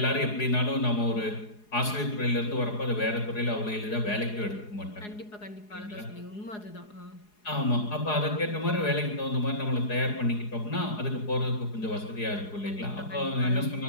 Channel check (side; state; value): right; late; 4.8 ms